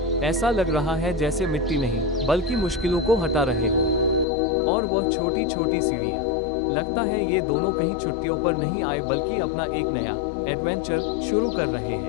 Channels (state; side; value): drops out; right; at 4.2 s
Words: ऐसा लग रहा है जैसे मिट्टी नहीं, बल्कि मुश्किलों को हटा रहे हो। और वह छोटी छोटी सीढ़ियाँ। लगता है ये दोनों कहीं छुट्टियों पर नहीं आए बल्कि अपना एक नया एडवेंचर शुरू कर रहे